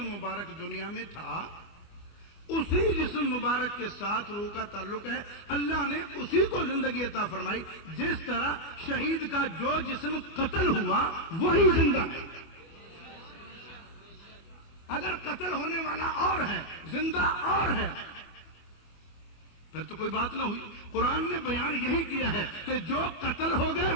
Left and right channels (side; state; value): right; late; 25 ms